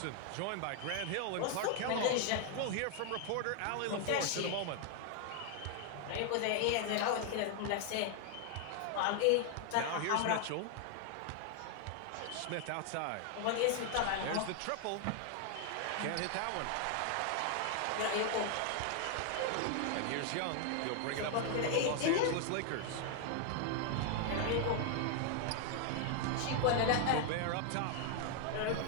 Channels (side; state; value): both; different; correlation 0.00